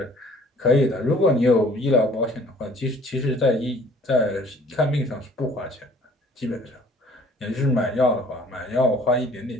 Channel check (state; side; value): normal; both; correlation 0.54